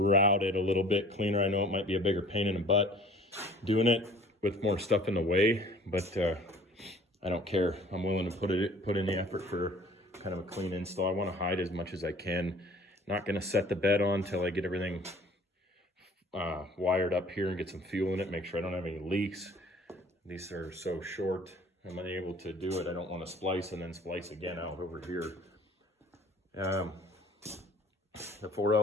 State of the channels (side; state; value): both; normal; correlation 0.50